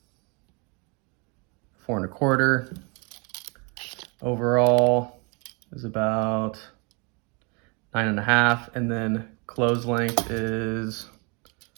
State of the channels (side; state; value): left; quieter; 31.7 dB